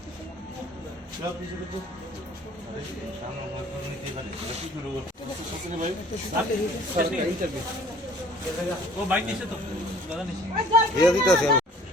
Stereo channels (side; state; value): both; normal; correlation 0.52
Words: ও বাইক নিছে তো দাদা নিছে দিয়ে দিতেছি